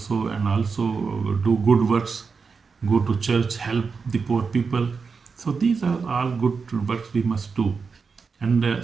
and also do good works, go to church, help the poor people. So these are all good works we must do. And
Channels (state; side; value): quieter; left; 5.1 dB